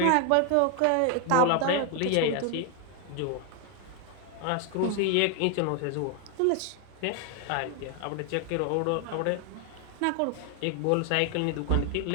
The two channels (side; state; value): both; different; correlation 0.00